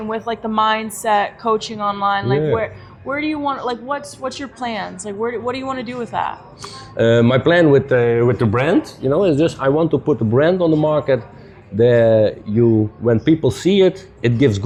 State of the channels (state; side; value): identical; both; correlation 1.00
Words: with like the mindset coaching online? Like where do you want, like, what's your plans? Like, what do you want to do with that? My plan with the brand, is just I want to put a brand on the market that when people see it, it gives